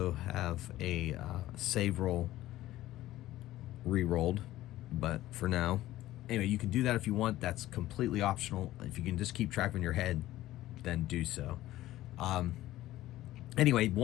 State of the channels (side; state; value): right; quieter; 15.3 dB